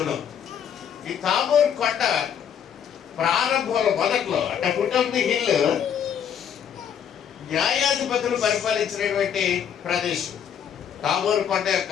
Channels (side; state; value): right; quieter; 8.5 dB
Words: ఈ తాబోరు కొండ ప్రారంభంలో మొదట్లో అంటే ఫుట్ ఆఫ్ ది హిల్ న్యాయాధిపతులు పరిపాలించినటువంటి ప్రదేశం. తాబోరు కొండ యొక్క